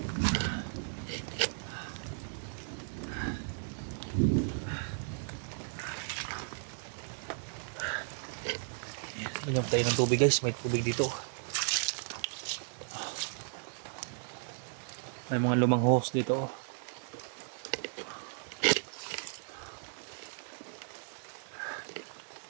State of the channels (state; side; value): silent; left; digital silence